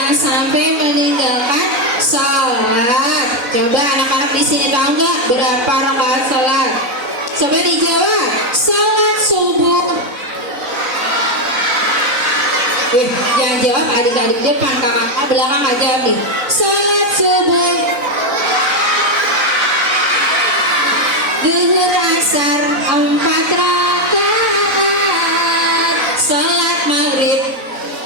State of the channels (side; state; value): left; late; 4.0 ms